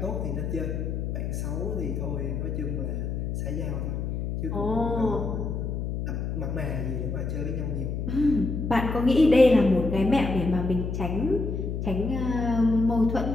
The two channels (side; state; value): left; noise; hum, 3 dB below the sound